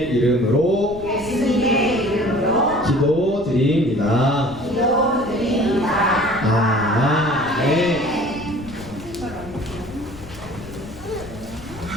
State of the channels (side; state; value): left; noise; rumble, 16 dB below the sound